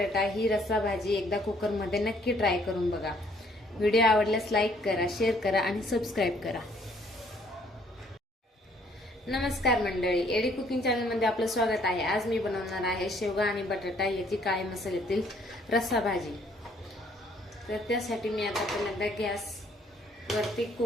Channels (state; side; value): normal; both; correlation 0.63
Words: ही रस्सा भाजी एकदा कुकरमध्ये नक्की ट्राय करून बघा। व्हिडिओ आवडल्यास लाईक करा, शेअर करा आणि सबस्क्राईब करा। नमस्कार मंडळी, एडी कुकिंग चॅनल मध्ये आपलं स्वागत आहे। आज मी बनवणार आहे शेवगा आणि बटाटा याची काळ्या मसाल्यातील रस्सा भाजी। तर त्यासाठी मी आता पहिल्यांदा गॅस वरती